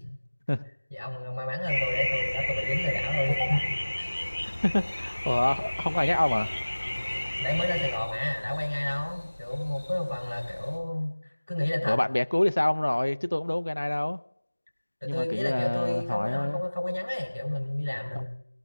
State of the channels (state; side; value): inverted; both; correlation -1.00